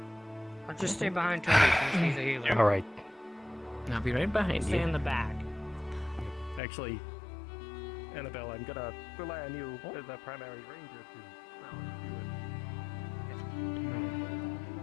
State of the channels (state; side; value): drops out; right; at 6.6 s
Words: I'll just stay behind Tony since he's a healer. All right. I'll be right behind Stay you. in the back. Actually, Annabelle, I'm gonna rely on you as a primary ranger to.